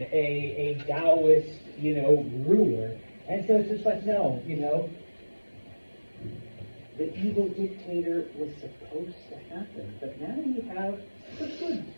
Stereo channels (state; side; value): inverted; both; correlation -1.00